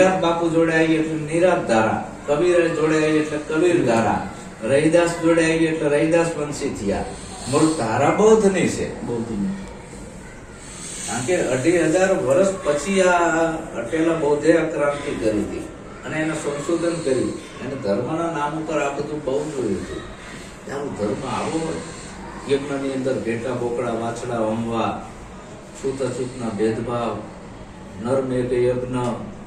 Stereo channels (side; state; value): both; identical; correlation 1.00